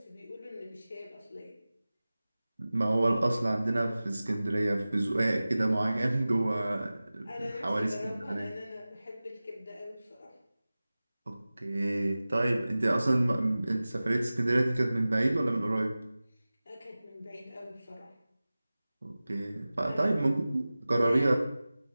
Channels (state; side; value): inverted; both; correlation -0.97